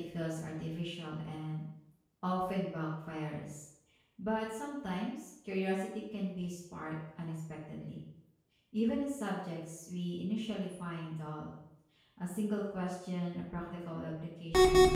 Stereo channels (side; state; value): both; identical; correlation 1.00